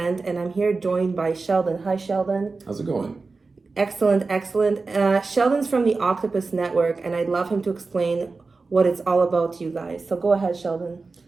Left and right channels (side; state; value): left; quieter; 4.0 dB